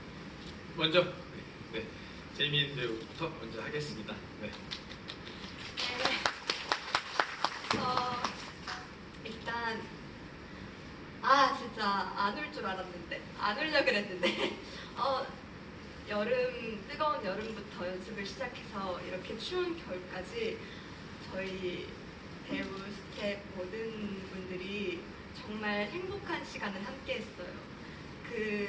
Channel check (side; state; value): both; identical; correlation 1.00